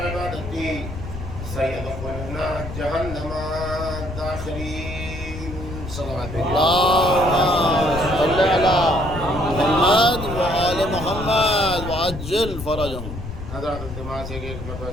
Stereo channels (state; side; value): noise; left; rumble, 9 dB below the sound